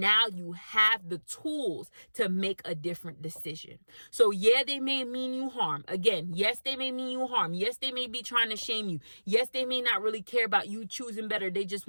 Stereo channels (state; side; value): inverted; both; correlation -1.00